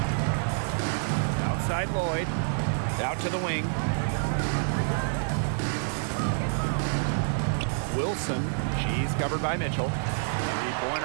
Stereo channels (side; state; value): left; silent; digital silence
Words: Outside Lloyd. Out to the wing. Wilson. She's covered by Mitchell.